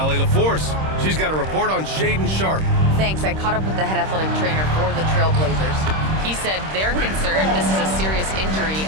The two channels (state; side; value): late; left; 26 ms